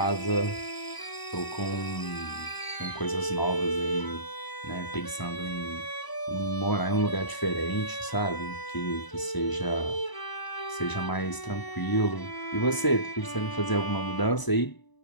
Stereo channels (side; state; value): right; late; 1.0 ms